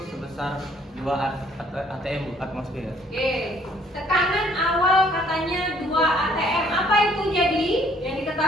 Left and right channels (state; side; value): normal; both; correlation 0.62